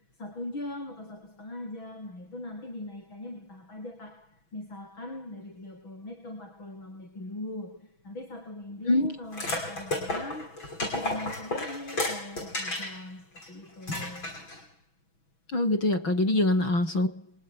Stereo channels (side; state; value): right; late; 6.1 ms